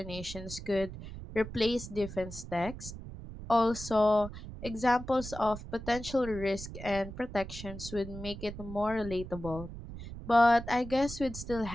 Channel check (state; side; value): noise; right; rumble, 11 dB below the sound